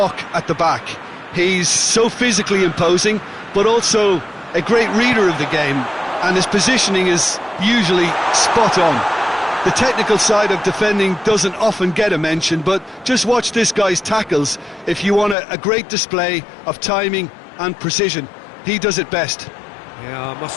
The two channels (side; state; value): right; drops out; at 15.4 s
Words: at the back. He's so physically imposing, but also a great reader of the game, and his positioning is usually spot on. The technical side of defending doesn't often get a mention, but just watch this guy's tackles if you want a great display of timing and precision. He does it best. Yeah, I